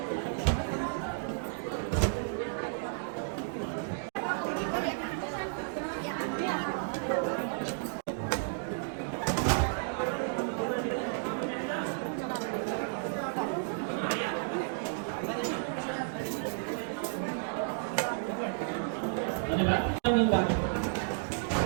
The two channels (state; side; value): silent; left; digital silence